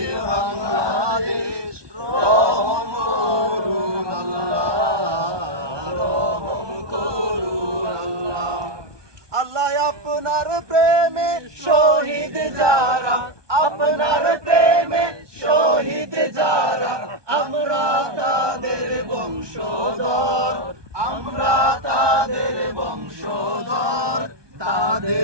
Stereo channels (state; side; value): late; left; 1.2 ms